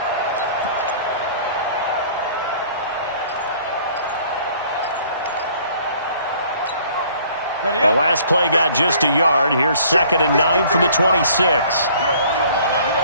The last play got just a yard. Here's 2nd and 9 from the 26.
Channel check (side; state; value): both; inverted; correlation -0.55